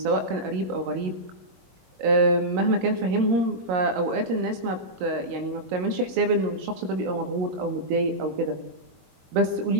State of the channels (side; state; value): left; late; 22 ms